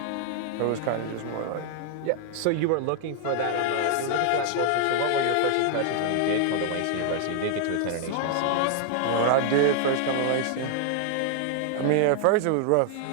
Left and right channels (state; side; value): different; both; correlation 0.00